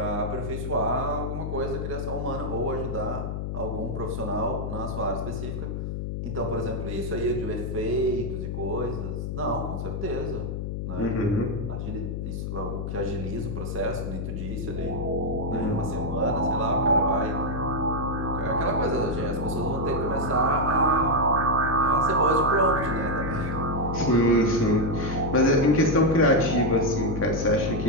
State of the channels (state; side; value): noise; left; hum, 4 dB below the sound